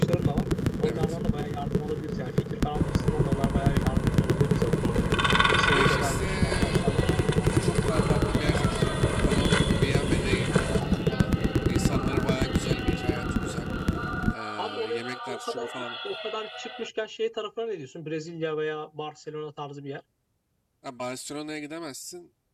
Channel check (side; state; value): both; identical; correlation 1.00